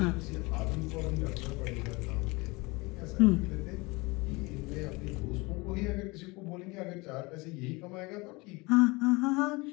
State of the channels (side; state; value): right; quieter; 24.9 dB